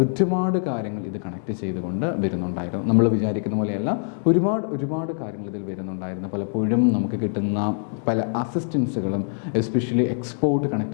ഒരുപാട് കാര്യങ്ങൾ ഇത് കണക്ട് ചെയ്തുകൊണ്ട് വരുന്നുണ്ടായിരുന്നു. നമ്മൾ വിചാരിക്കുന്ന പോലെയല്ല, ഒരുപാട് കാര്യങ്ങൾ ഇതിൽ വരുന്നുണ്ടായിരുന്നു. പലപ്പോഴും നമുക്ക് കിട്ടുന്ന പല അസിസ്റ്റൻസുകളും എസ്പെഷ്യലി എക്സ്പോർട്ട്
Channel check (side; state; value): right; silent; 63 dB below the other